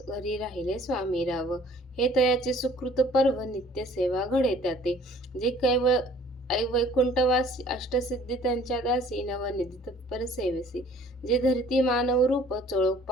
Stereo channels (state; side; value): normal; both; correlation 0.54